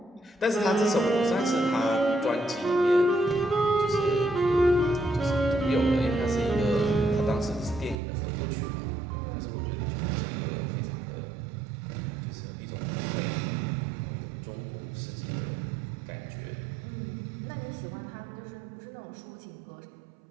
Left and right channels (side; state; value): left; drops out; at 8.0 s